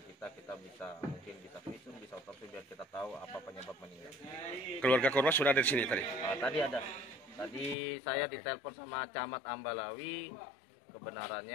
kita bisa visum, bisa otopsi biar kita tahu apa penyebab meninggal. Keluarga korban sudah ada di sini tadi? Tadi ada. Tadi saya ditelepon sama Camat Ambalawi.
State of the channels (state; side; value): drops out; right; at 7.8 s